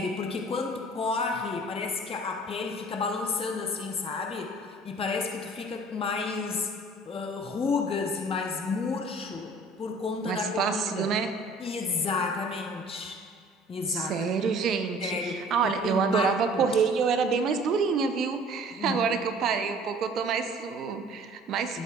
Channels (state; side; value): normal; both; correlation 0.50